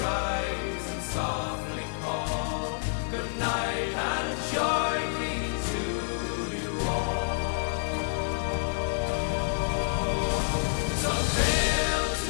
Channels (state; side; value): silent; right; 59 dB below the other